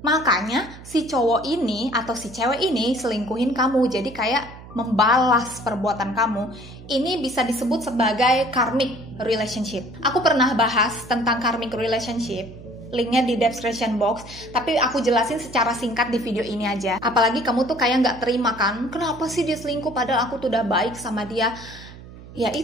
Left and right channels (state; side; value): noise; right; hum, 17 dB below the sound